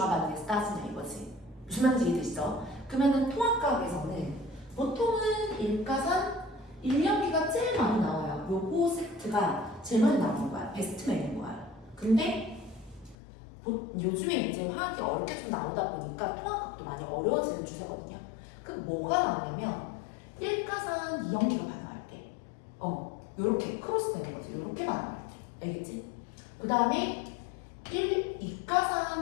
반응에서 따지냐 이거지. 무슨 말인지 이해되시죠? 그러면은 통합과학에서는 보통은 1가산 1연기가 제일 많이 나와요. 요거 세트가 제일 많이 나오는 거야. 베스트맨인 거야. 근데 요즘에 이제 화학이 어렵게 좀 나오다 보니까 통합각도 많이 어려워지는 추세거든요. 그럼 뭐가 나오냐면 1가산 2연기가 반응할 때 요렇게 크로스 되는 거지. 요렇게 반응할 때. 알겠지? 그 다음에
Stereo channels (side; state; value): right; drops out; at 13.2 s